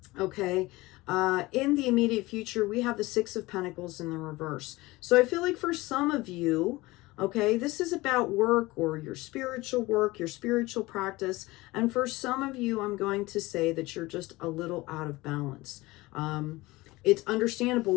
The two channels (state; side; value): quieter; right; 20.6 dB